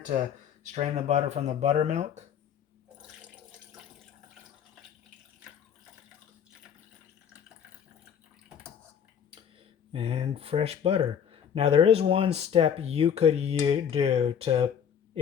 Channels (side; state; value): right; quieter; 8.1 dB